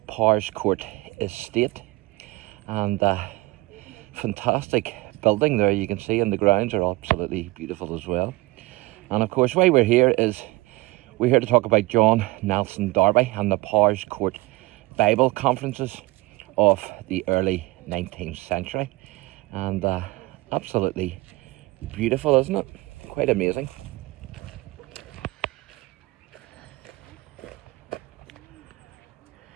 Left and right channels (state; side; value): quieter; left; 21.0 dB